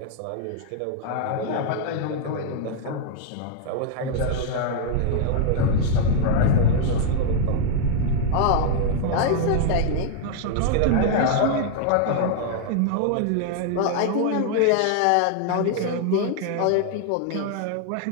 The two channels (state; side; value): different; both; correlation 0.00